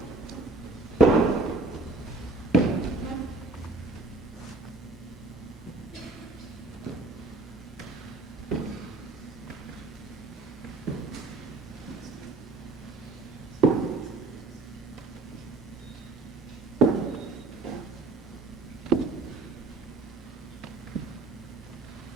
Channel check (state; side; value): quieter; left; 3.2 dB